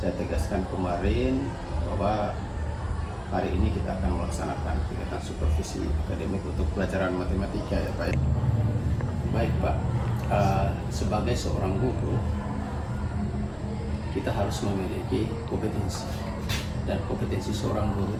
tegaskan kemarin bahwa hari ini kita akan melaksanakan kegiatan supervisi akademik untuk pelajaran matematika ya Pak. Baik Pak, sebagai seorang guru kita harus memiliki kompetensi, dan kompetensi seorang guru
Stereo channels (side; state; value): both; identical; correlation 1.00